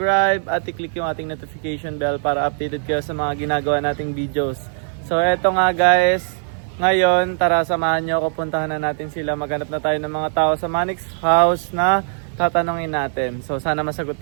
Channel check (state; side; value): silent; left; 59 dB below the other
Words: at i-click yung ating notification bell para updated kayo sa mga ginagawa nating videos. So eto nga guys, ngayon tara samahan nyo ako, puntahan na natin sila. Maghanap na tayo ng mga tao sa Manix House na tatanungin natin. So sana masagot